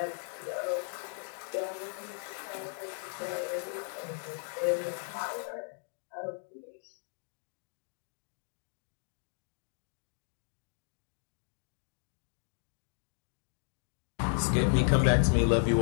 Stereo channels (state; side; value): silent; right; 55 dB below the other